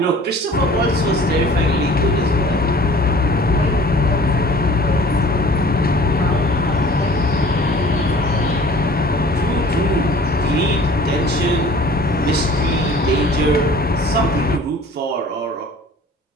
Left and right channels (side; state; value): both; normal; correlation 0.48